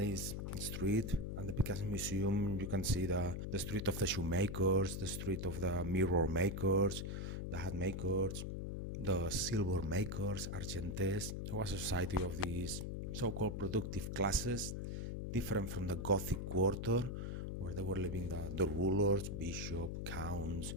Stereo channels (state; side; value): noise; left; hum, 4 dB below the sound